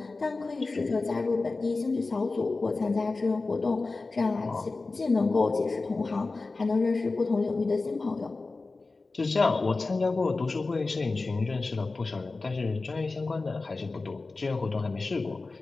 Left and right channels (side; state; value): right; quieter; 3.6 dB